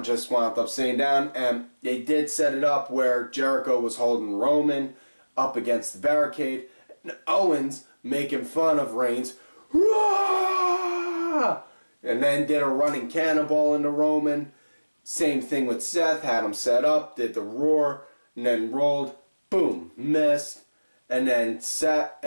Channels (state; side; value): inverted; both; correlation -1.00